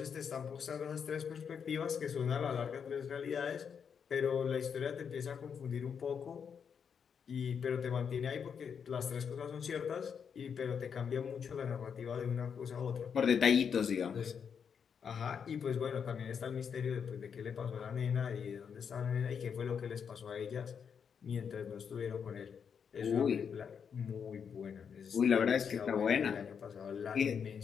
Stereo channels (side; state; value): right; quieter; 7.0 dB